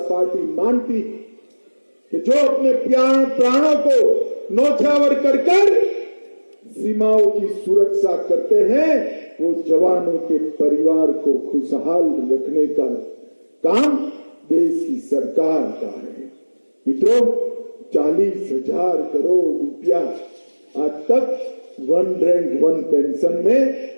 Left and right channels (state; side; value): inverted; both; correlation -1.00